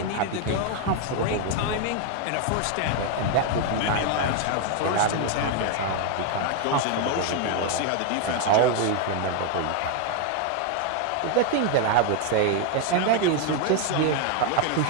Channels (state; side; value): different; both; correlation 0.01